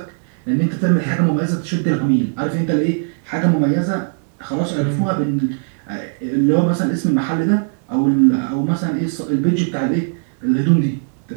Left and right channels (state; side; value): silent; left; digital silence